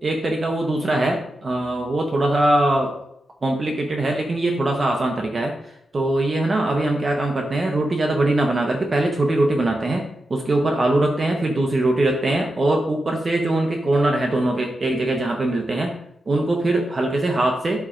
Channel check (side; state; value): both; normal; correlation 0.89